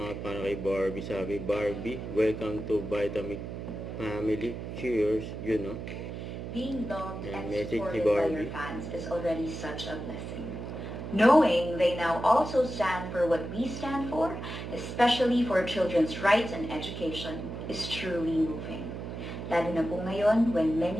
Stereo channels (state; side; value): noise; right; hum, 7 dB below the sound